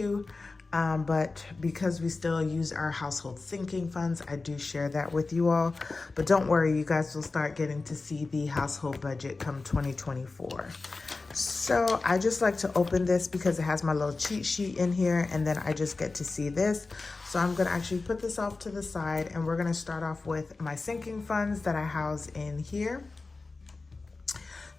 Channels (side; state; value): right; quieter; 3.7 dB